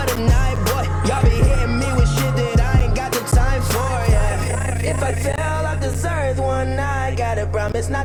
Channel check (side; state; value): both; identical; correlation 1.00